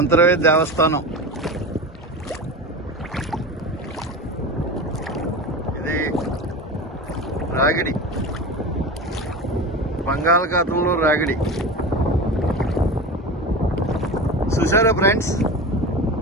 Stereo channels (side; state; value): both; normal; correlation 0.28